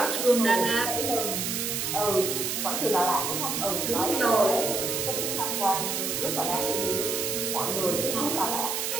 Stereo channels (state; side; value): noise; right; hiss, 1 dB below the sound